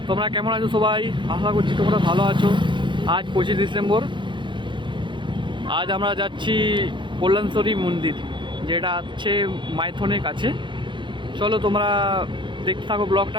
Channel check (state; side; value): late; left; 0.23 ms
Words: তোমরা কেমন আছো? সবাই আশা করছি তোমরা ভালো আছো। আজ 25 ডিসেম্বর। আজ আমরা যাচ্ছি কল্যাণেশ্বরী মন্দির, যেটা আছে মাইথনের কাছে। চলো তোমরা দেখতে থাকো